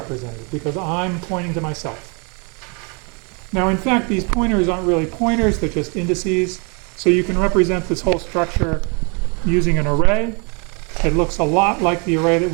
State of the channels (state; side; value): quieter; left; 33.9 dB